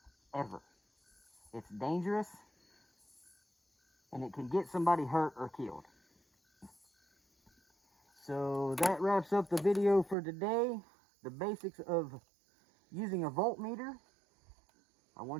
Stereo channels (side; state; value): left; drops out; at 10.2 s